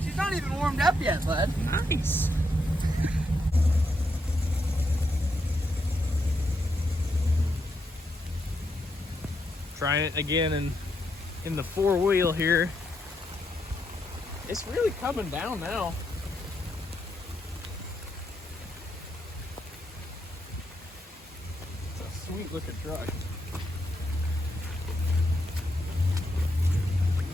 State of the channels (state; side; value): normal; both; correlation 0.80